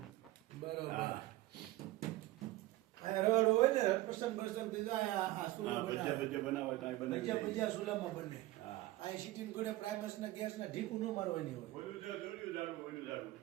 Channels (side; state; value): left; quieter; 17.6 dB